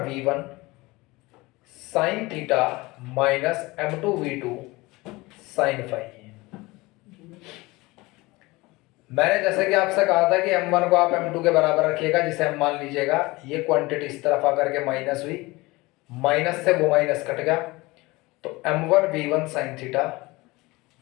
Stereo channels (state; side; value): quieter; right; 22.0 dB